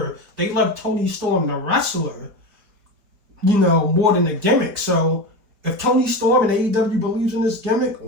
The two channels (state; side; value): late; left; 4.9 ms